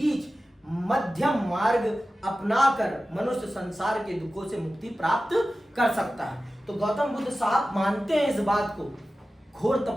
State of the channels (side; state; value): both; normal; correlation 0.95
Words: मध्यम मार्ग अपनाकर मनुष्य संसार के दुखों से मुक्ति प्राप्त कर सकता है। तो गौतम बुद्ध साहब मानते हैं इस बात को। घोर